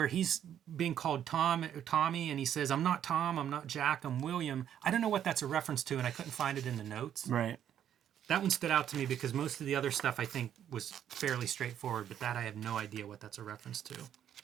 he's being called Tommy, and he says, "I'm not Tom, I'm not Jack, I'm William." I don't know what that's a reference to, and I couldn't find it in the notes. Right. That one stood out to me because most of the other stuff I think was fairly straightforward, but that I have no idea what that's a reference to.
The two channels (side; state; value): left; quieter; 9.9 dB